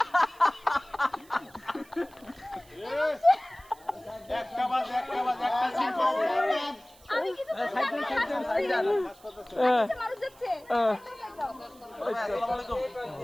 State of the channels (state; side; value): noise; right; hiss, 26 dB below the sound